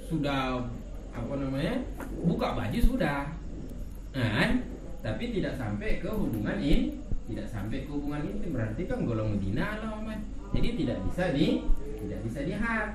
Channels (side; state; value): both; identical; correlation 1.00